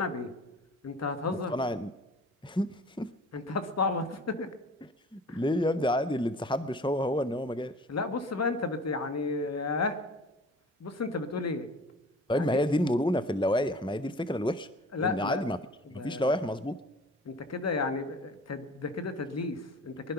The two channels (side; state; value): both; normal; correlation 0.45